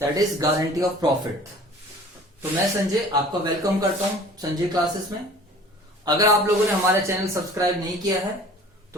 that is guarantee of profit. तो मैं संजय आपका वेलकम करता हूं संजय क्लासेस में। अगर आप लोगों ने हमारा चैनल सब्सक्राइब नहीं किया है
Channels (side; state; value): both; normal; correlation 0.47